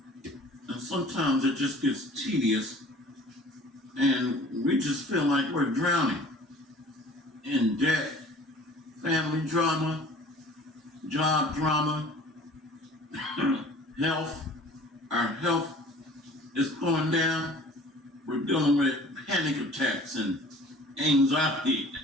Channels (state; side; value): normal; both; correlation 0.48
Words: And sometimes it just gets tedious and we just feel like we're drowning in debt, family drama, job drama, health. Our health is going down. We're dealing with panic attacks and anxiety.